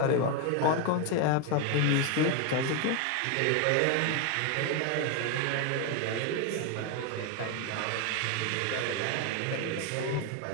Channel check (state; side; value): different; both; correlation 0.02